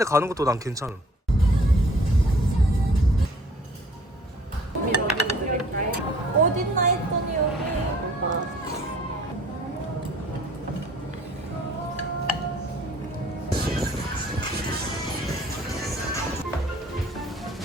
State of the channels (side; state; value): both; normal; correlation 0.55